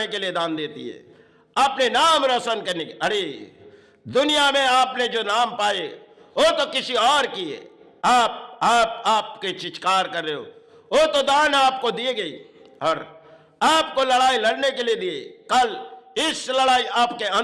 के लिए दान देती है, अपने नाम रोशन करने के। अरे दुनिया में आपने जो नाम पाए वो तो किसी और की है, आपके चित्कार कर रहे हो, वो तो दान आपको दिए गई और आपको लड़ाई लड़ने के लिए दिए। कल इस लड़ाई आपके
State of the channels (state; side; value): identical; both; correlation 1.00